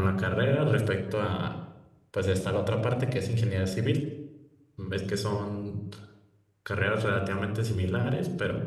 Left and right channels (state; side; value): identical; both; correlation 1.00